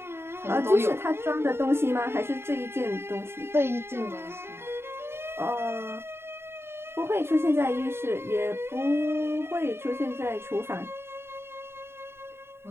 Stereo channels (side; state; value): left; late; 0.12 ms